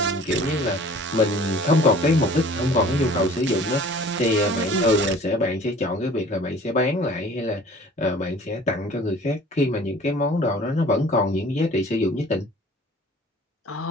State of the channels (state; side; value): normal; both; correlation 0.48